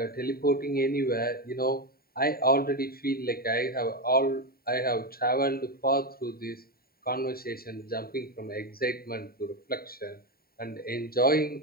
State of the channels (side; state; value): right; late; 0.43 ms